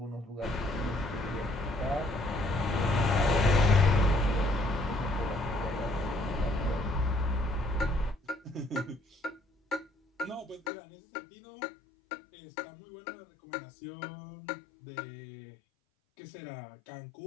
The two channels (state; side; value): drops out; right; at 10.7 s